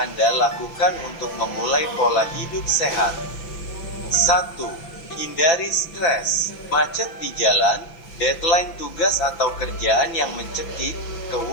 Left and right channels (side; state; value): right; late; 6.0 ms